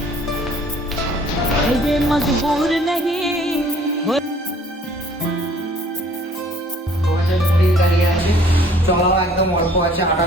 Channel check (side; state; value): both; normal; correlation 0.56